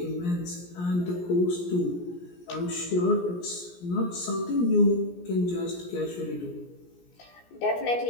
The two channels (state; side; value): late; right; 17 ms